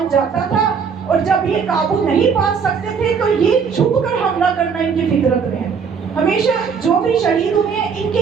جاتا تھا اور جب یہ قابو نہیں پا سکتے تھے تو یہ چھپ کر حملہ کرنا ان کی فطرت میں ہے. ہمیشہ جو بھی شہید ہوئے ہیں ان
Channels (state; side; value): quieter; left; 6.2 dB